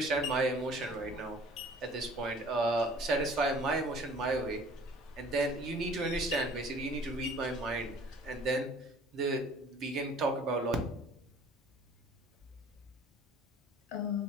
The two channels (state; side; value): normal; both; correlation 0.51